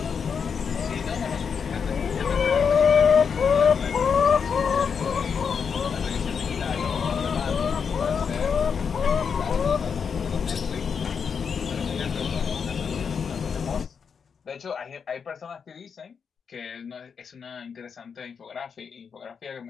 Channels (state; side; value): quieter; right; 6.4 dB